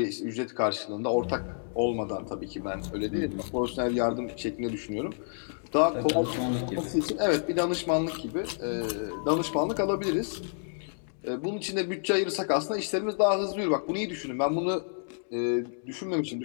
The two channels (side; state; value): right; silent; digital silence